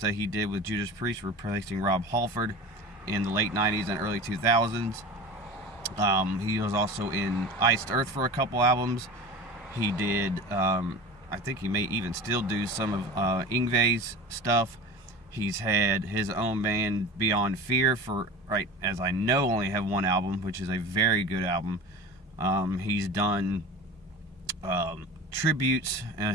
that he did with Judas Priest, replacing Rob Halford in the late 90s and early 2000s. He was also in Iced Earth for a couple albums. He did, I think he may even still do some of Yngwie's stuff. He's had his own band, Beyond Fear, for, right as I know, only have 1 album, which is a very good album. He's done tributes.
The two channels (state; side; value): normal; both; correlation 0.35